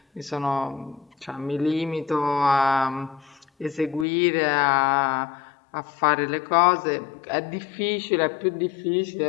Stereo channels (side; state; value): right; drops out; at 4.0 s